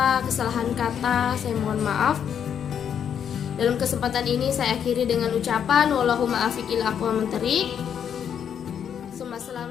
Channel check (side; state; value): right; quieter; 8.4 dB